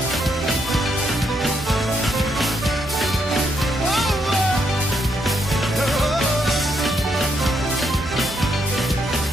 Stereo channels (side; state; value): both; normal; correlation 0.76